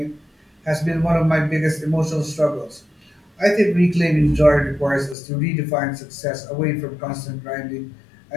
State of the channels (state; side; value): drops out; right; at 5.2 s